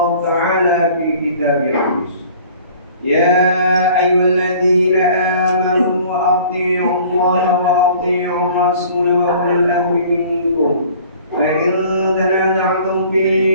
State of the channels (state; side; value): inverted; both; correlation -0.50